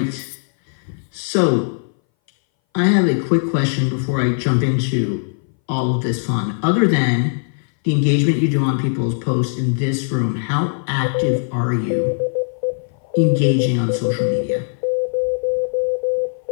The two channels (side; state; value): right; silent; 61 dB below the other